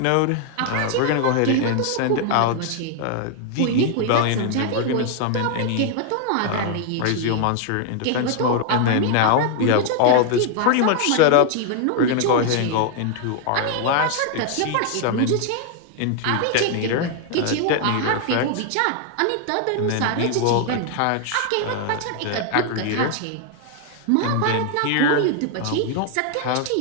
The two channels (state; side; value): different; both; correlation 0.00